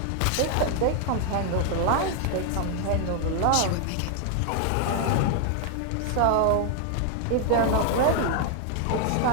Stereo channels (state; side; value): different; both; correlation 0.00